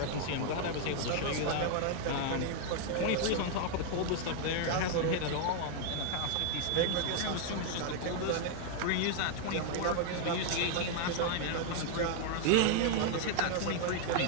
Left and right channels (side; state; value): both; different; correlation 0.00